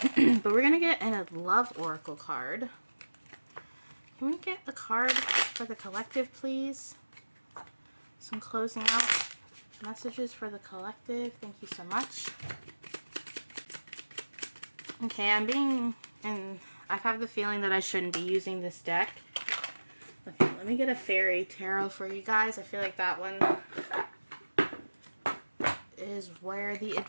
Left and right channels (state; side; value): inverted; both; correlation -1.00